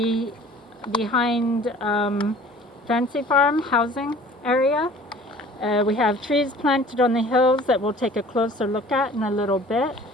Fancy Farm housing area. We have trees planted on the hills that we'll take a closer look at in a little bit.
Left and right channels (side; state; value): both; normal; correlation 0.48